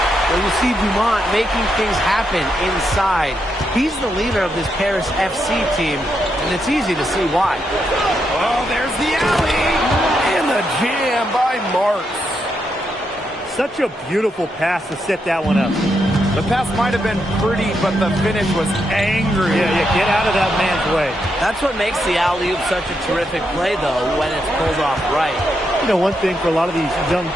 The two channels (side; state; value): both; normal; correlation 0.81